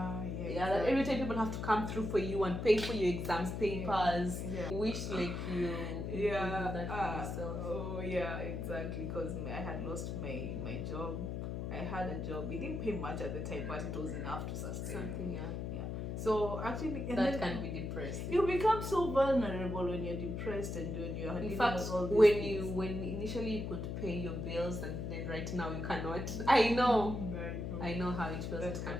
That every time people have to come through for you and pay for your exams papers. Yeah. Wish like you do that for yourself. Oh yeah, exactly. Because I had lost my job. I had a job. It didn't pay much at the time, but it was enough to sustain me. Something, So actually, and that then can be depressing. you become so vulnerable when you're depressed and when you're In dealing fact, with all these when things. when initially you could pay your bills and then right now you cannot. I know how it feels. That It can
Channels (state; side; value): noise; left; hum, 4 dB below the sound